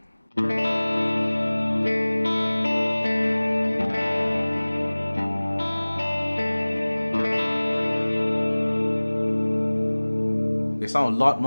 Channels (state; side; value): inverted; both; correlation -1.00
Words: They sound a lot